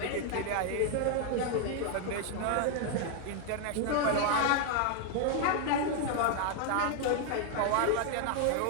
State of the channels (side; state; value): both; different; correlation 0.00